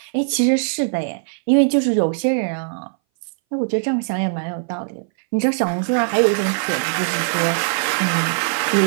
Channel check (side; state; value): left; silent; 61 dB below the other